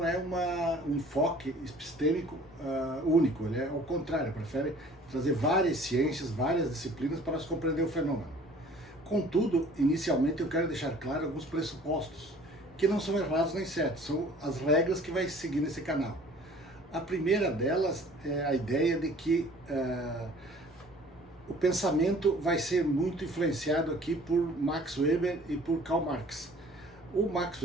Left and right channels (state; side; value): normal; both; correlation 0.50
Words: é um enfoque epistêmico único, ele é ao contrário, prefere trazer várias ciências, várias disciplinas para se compreender o fenômeno. Contudo, inicialmente eu quero deixar claro alguns pressupostos, que não são errados nem certos, são as regras que vai seguir nesse canal. A primeira delas é a ideia de que o pensamento vai ser muito influenciado aqui por Max Weber e por Karl Marx. O Max